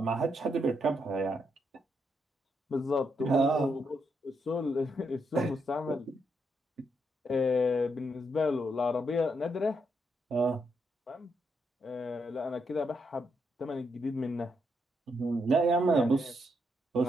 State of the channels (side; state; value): both; normal; correlation 0.79